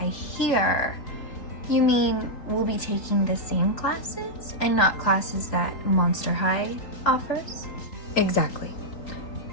here, you mean we'll be taking the same classes and not classes that Monster High offers? Exactly.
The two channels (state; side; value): late; right; 3.8 ms